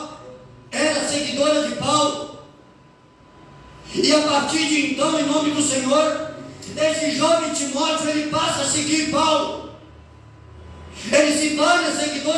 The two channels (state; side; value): identical; both; correlation 1.00